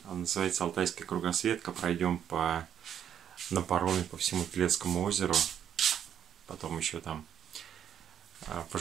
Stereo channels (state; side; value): quieter; left; 9.3 dB